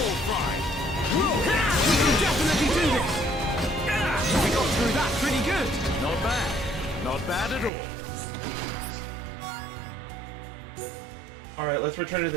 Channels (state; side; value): drops out; left; at 7.7 s